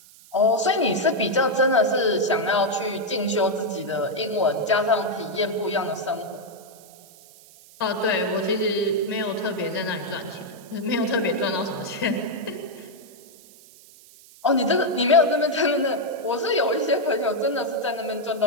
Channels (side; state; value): right; noise; hiss, 23 dB below the sound